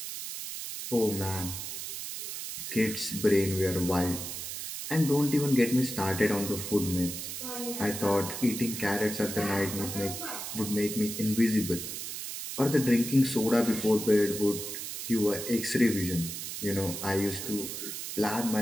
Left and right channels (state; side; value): noise; right; hiss, 6 dB below the sound